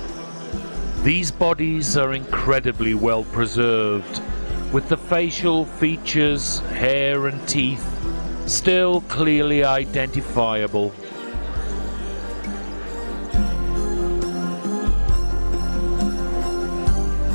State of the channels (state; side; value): inverted; both; correlation -1.00